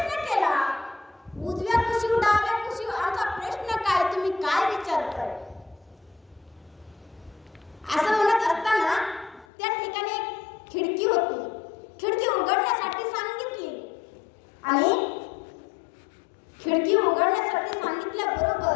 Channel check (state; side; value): drops out; right; at 9.5 s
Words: केला, उजव्या कुशीवर डाव्या कुशीवर? आमचा प्रश्न काय, तुम्ही काय विचारताय? असं म्हणत असताना त्या ठिकाणी एक खिडकी होती. खिडकी उघडण्यासाठी सांगितली आणि खिडकी उघडण्यासाठी